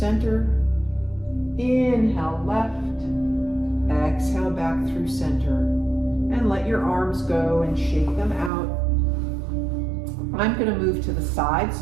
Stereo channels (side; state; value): left; drops out; at 8.5 s